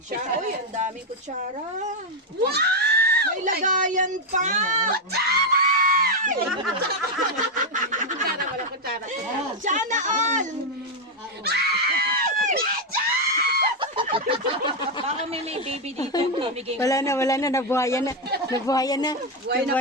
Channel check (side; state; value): both; normal; correlation 0.03